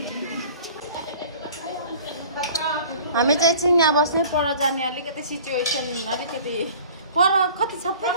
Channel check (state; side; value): inverted; both; correlation -0.46